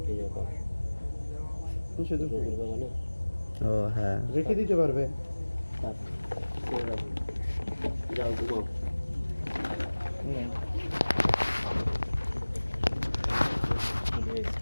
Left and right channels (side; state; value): both; inverted; correlation -1.00